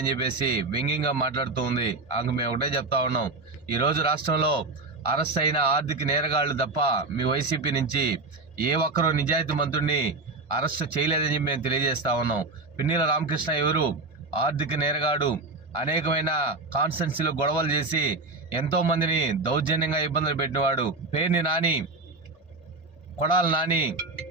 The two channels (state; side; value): quieter; left; 3.4 dB